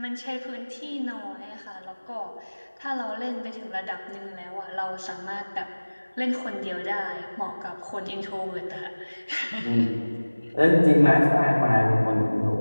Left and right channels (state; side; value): inverted; both; correlation -1.00